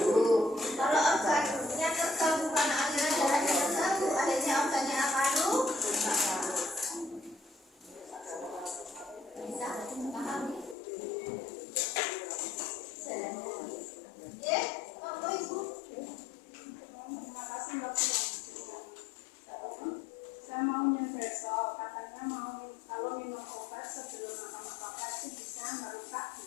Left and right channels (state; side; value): drops out; right; at 10.8 s